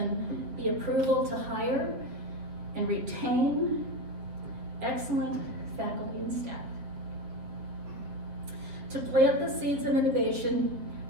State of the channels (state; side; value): late; left; 8.0 ms